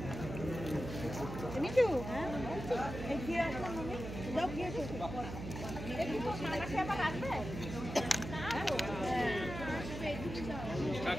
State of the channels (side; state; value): right; noise; hum, 8 dB below the sound